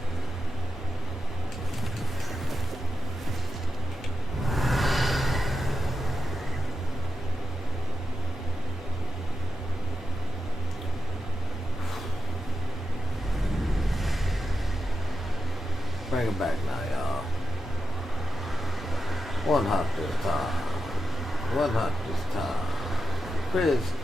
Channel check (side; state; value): both; normal; correlation 0.88